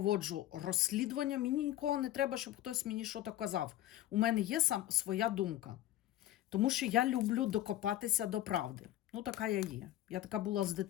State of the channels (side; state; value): right; quieter; 13.8 dB